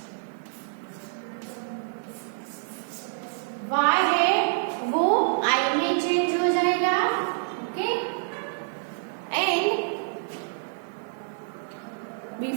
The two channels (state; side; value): silent; left; digital silence